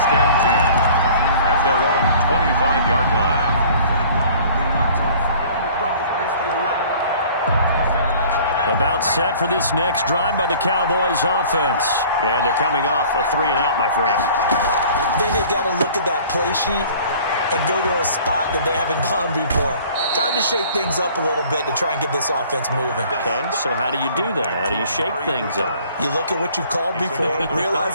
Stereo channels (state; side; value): inverted; both; correlation -0.50